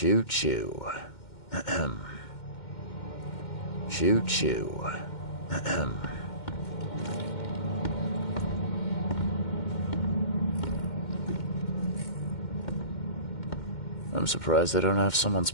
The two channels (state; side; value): late; right; 2.1 ms